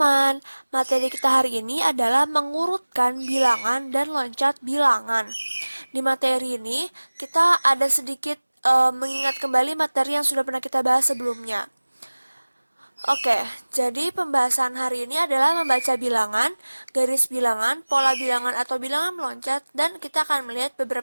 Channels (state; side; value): inverted; both; correlation -1.00